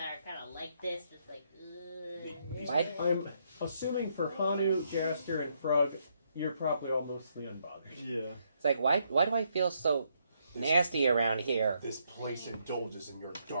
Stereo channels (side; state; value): both; inverted; correlation -0.75